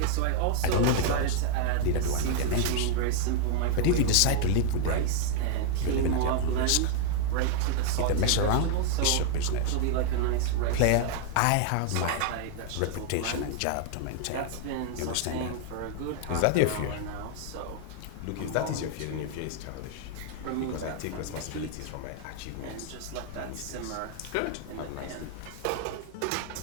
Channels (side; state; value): both; different; correlation 0.00